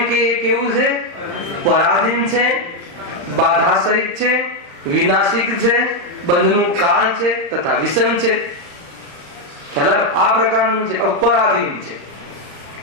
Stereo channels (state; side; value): late; left; 34 ms